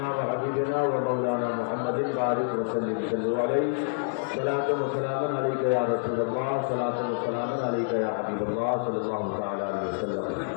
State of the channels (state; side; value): silent; right; digital silence